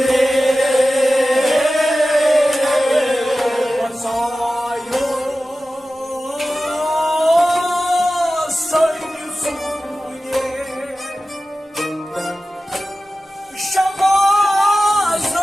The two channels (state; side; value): normal; both; correlation 0.95